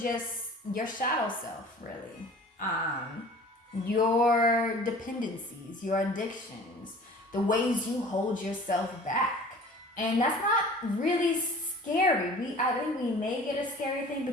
your shadow self, really. Your dependencies, your addictions, the ways you hold yourself back. And that's not really scary. I think we may get a scary thing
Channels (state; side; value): normal; both; correlation 0.45